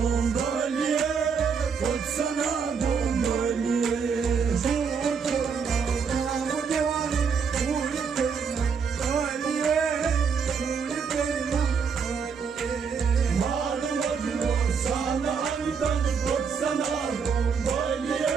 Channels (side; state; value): left; quieter; 6.0 dB